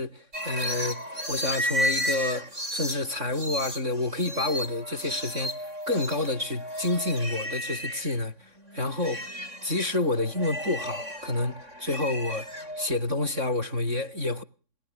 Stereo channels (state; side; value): late; left; 3.6 ms